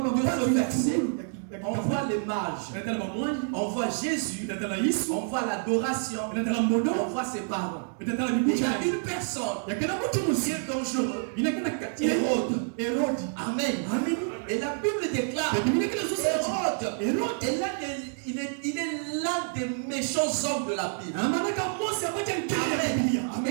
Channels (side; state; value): left; silent; 59 dB below the other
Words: De baba ce verset, on on voit les mages, natala bamwanji on voit Jésus, natala Yesu on voit l'adoration, natala mbodo on voit ses parents. natala Et il y bibucha a une personne yakela mutu qui musi est dangereux. inakana kati ya Hérode. Herodi Amen. amen Et la Bible déclare biblia kile so Hérode Hérode est il est l'un des méchants hommes de la Bible. amanaka Mose abacha nkele ya biblia Amen.